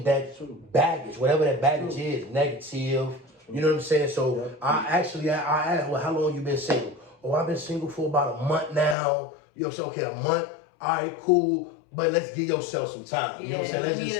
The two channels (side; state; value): right; drops out; at 9.0 s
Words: that baggage, whatever that baggage is, negative. You know what I'm saying? So I asked, well, how long you been single? Oh, I've been single for about a month now. You know what I'm saying? Okay, a month. All right, cool. But let's give yourself some time. You know what I'm saying? Let's